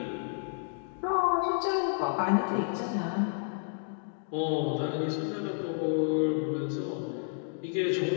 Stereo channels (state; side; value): silent; right; digital silence